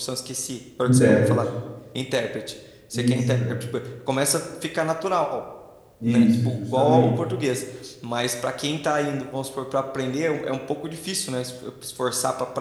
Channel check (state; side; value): identical; both; correlation 1.00